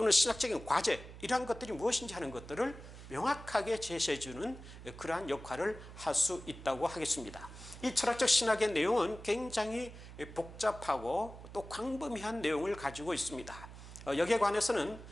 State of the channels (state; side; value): noise; right; hum, 14 dB below the sound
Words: 신학적인 과제 이러한 것들이 무엇인지 하는 것들을 명확하게 제시해주는 그러한 역할을 할 수 있다고 하겠습니다. 이 철학적 신학의 내용은 굉장히 복잡하고 또 광범위한 내용을 가지고 있습니다. 여기에 관해서는